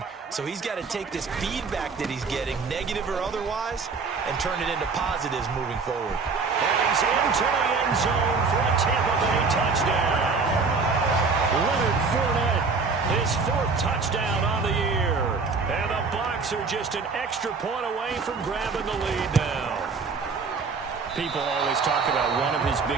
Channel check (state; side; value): quieter; left; 4.6 dB